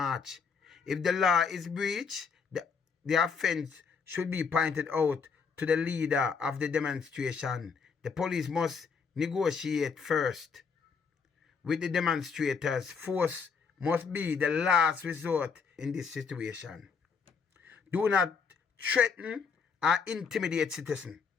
If the law is breached, the offense should be pointed out to the leader of the demonstration. The police must negotiate first with the demonstrators. Force must be the last resort in this situation. Do not threaten or intimidate citizens.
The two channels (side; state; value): right; quieter; 5.7 dB